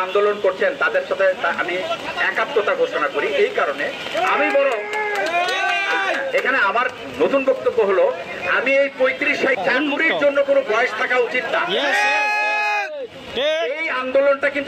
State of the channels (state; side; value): identical; both; correlation 1.00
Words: আন্দোলন করছেন, তাদের সাথে আমি একাত্মতা ঘোষণা করি। এই কারণে আমি বড় এখানে আমার নতুন বক্তব্য হলো, আমি এই 35 চাকুরির জন্য কোনো বয়স থাকা উচিত না। এই আন্দোলনটা